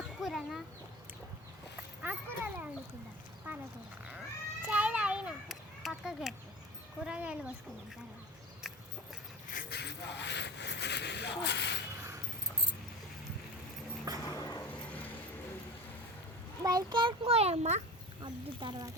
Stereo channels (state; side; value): normal; both; correlation 0.31